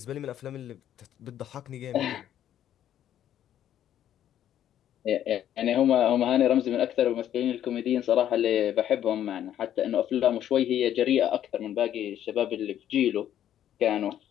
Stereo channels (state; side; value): quieter; right; 10.9 dB